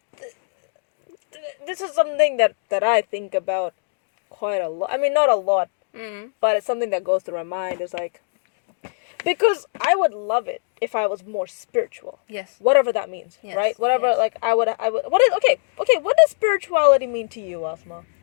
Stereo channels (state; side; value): silent; right; digital silence